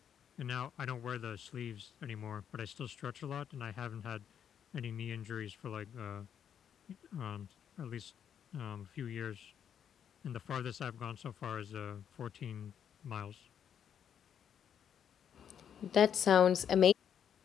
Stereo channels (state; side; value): quieter; right; 8.6 dB